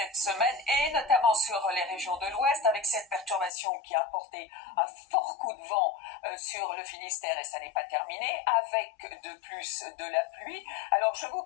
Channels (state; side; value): drops out; right; at 3.5 s